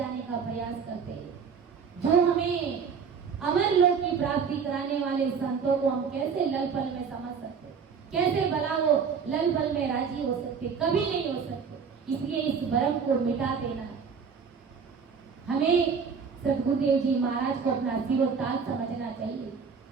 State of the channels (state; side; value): quieter; left; 6.1 dB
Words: का प्रयास करते हैं। जो हमें अमर लोक की प्राप्ति कराने वाले संतों को हम कैसे लल पल में समझ सकते, कैसे भला वो लल पल में राजी हो सकते, कभी नहीं हो सकते। इसलिए इस भ्रम को मिटा देना है। हमें सतगुरुदेव जी महाराज को अपना सिरोताज समझना चाहिए।